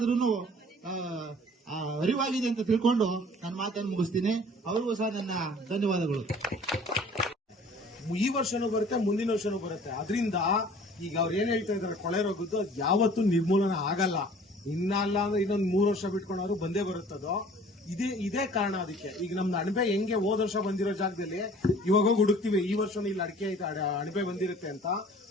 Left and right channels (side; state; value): both; normal; correlation 0.50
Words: ಅರಿವಾಗಿದೆ ಅಂತ ತಿಳ್ಕೊಂಡು ನನ್ನ ಮಾತನ್ನು ಮುಗಿಸ್ತೀನಿ. ಅವ್ರಿಗೂ ಸಹ ನನ್ನ ಧನ್ಯವಾದಗಳು. ಈ ವರ್ಷನೂ ಬರುತ್ತೆ, ಮುಂದಿನ ವರ್ಷನೂ ಬರುತ್ತೆ. ಅದರಿಂದ ಈಗ ಅವ್ರು ಏನ್ ಹೇಳ್ತಾ ಇದಾರೆ ಕೊಳೆ ರೋಗದ್ದು ಅದು ಯಾವತ್ತೂ ನಿರ್ಮೂಲನ ಆಗಲ್ಲ. ಇನ್ನಲ್ಲ ಅಂದ್ರೆ ಇನ್ನೊಂದ್ 3 ವರ್ಷ ಬಿಟ್ಕೊಂಡವ್ರು ಬಂದೇ ಬರುತ್ತದೋ. ಇದೇ ಕಾರಣ ಅದಕ್ಕೆ. ಈಗ ನಮ್ದು ಅಣಬೆ ಹೆಂಗೆ ಹೋದ ವರ್ಷ ಬಂದಿರೋ ಜಾಗದಲ್ಲಿ ಇವಾಗ ಹೋಗಿ ಹುಡುಕ್ತಿವಿ, ಈ ವರ್ಷ ಇಲ್ಲಿ ಅಡಿಕೆ ಐತೆ ಅಣಬೆ ಬಂದಿರುತ್ತೆ ಅಂತ.